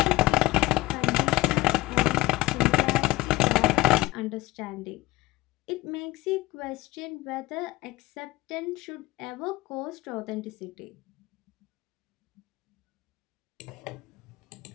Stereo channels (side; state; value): right; quieter; 19.2 dB